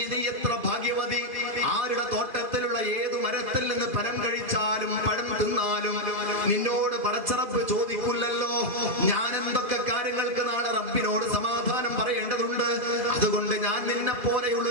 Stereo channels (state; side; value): late; left; 2.4 ms